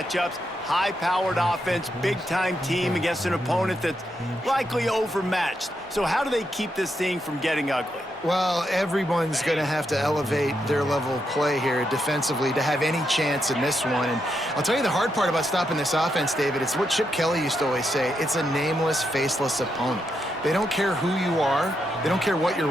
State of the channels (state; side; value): normal; both; correlation 0.82